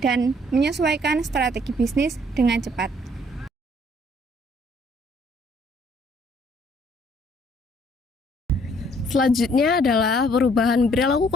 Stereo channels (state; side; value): normal; both; correlation 0.63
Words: dan menyesuaikan strategi bisnis dengan cepat. Selanjutnya adalah perubahan perilaku